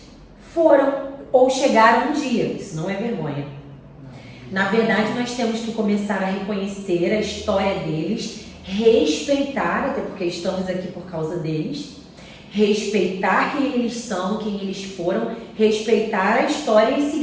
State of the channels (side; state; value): both; identical; correlation 1.00